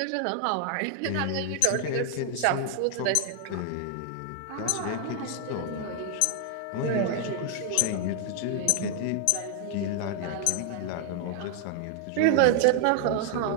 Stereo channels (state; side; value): different; both; correlation 0.00